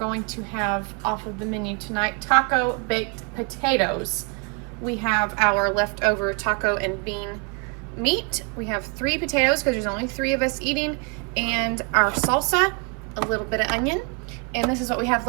to have off of the menu tonight taco baked potatoes. We have our leftover taco and bean meat. We have 3 potatoes because there's only 3 of us eating, and our salsa, a little bit of onion. And this is what we have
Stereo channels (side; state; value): left; quieter; 33.0 dB